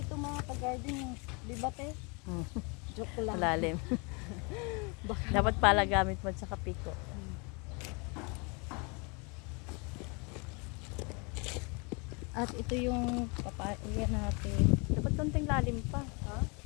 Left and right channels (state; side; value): quieter; right; 31.7 dB